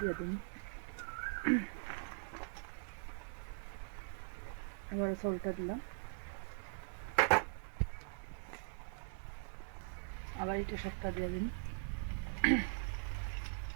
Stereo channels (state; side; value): silent; left; 50 dB below the other